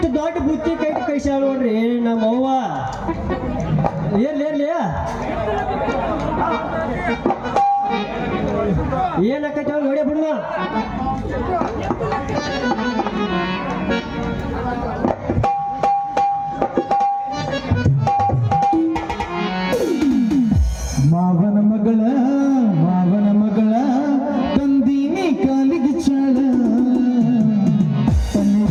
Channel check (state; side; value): identical; both; correlation 1.00